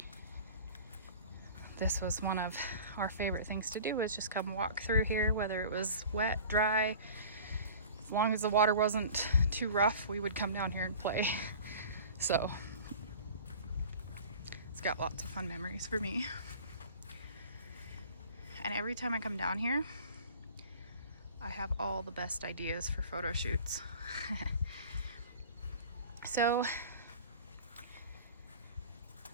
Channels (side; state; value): both; inverted; correlation -0.42